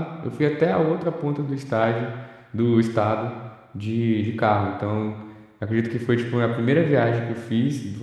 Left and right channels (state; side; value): identical; both; correlation 1.00